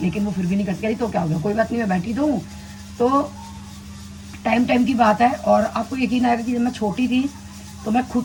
लेकिन वो फिर भी नहीं करती। तो क्या हो गया, कोई बात नहीं, मैं बैठी तो हूँ। तो टाइम टाइम की बात है। और आपको यकीन आएगा कि जब मैं छोटी थी तो मैं खुद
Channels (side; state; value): both; identical; correlation 1.00